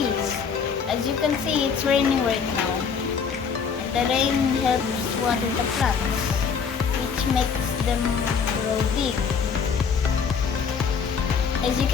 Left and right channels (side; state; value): right; quieter; 6.2 dB